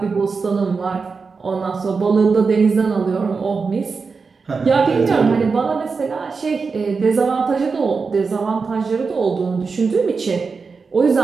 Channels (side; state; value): left; quieter; 4.8 dB